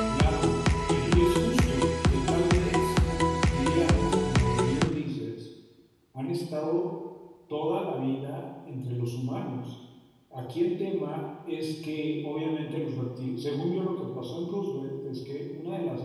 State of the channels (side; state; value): both; identical; correlation 1.00